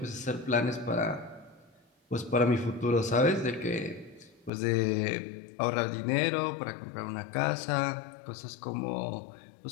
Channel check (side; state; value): right; drops out; at 4.5 s